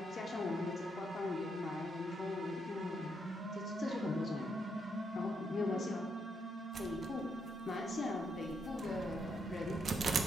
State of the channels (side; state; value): both; normal; correlation 0.78